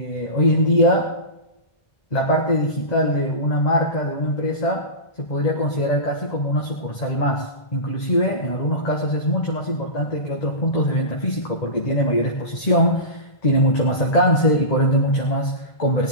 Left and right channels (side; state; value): right; late; 1.4 ms